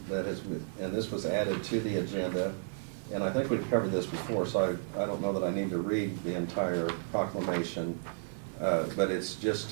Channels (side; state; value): left; silent; digital silence